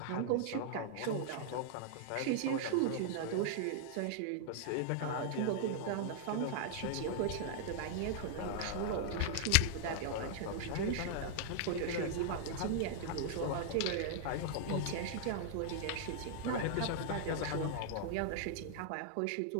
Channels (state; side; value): different; both; correlation -0.01